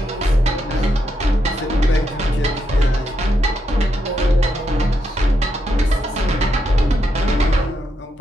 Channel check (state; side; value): normal; both; correlation 0.81